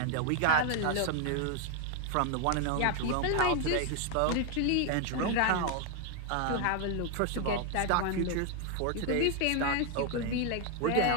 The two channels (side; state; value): both; different; correlation 0.01